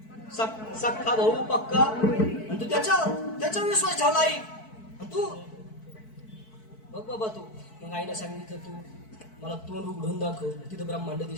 सख्खा भाऊ पक्का, आणि तू त्याच्या विश्वास ठेवला आई. आणि तू बघ बाबा तू. मग आईने सांगितलं तू मला तोंड उघडून दाखव. तिथं ब्रह्मांड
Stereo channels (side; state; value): right; late; 4.6 ms